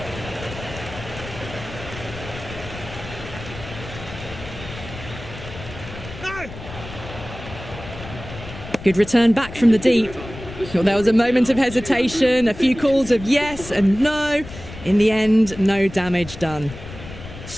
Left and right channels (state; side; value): noise; left; rumble, 13 dB below the sound